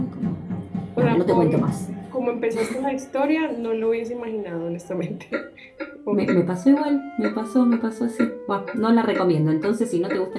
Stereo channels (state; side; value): identical; both; correlation 1.00